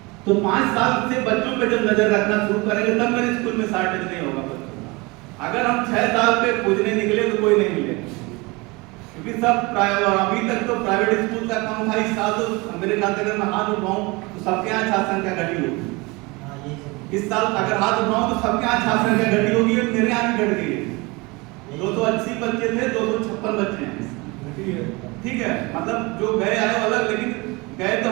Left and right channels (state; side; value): quieter; left; 25.2 dB